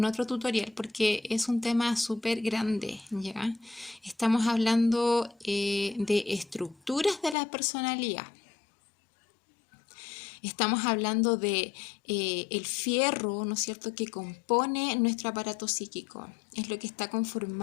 otro tutorial porque es un tema súper grande, ¿ya? Estamos hablando de estructuras de la personalidad. Estamos hablando de el fierro, ¿no es cierto?, que compone nuestro aparato psíquico. Es lo que está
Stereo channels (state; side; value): drops out; right; at 7.4 s